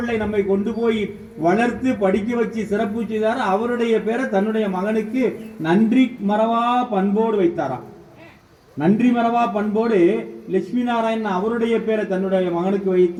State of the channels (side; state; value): both; identical; correlation 1.00